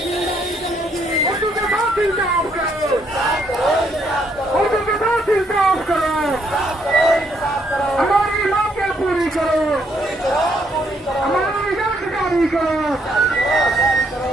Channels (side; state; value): both; normal; correlation 0.71